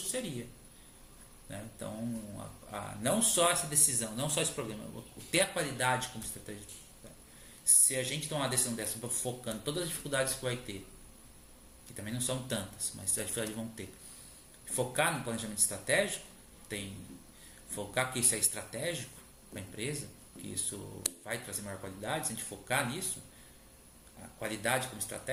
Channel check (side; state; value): both; identical; correlation 1.00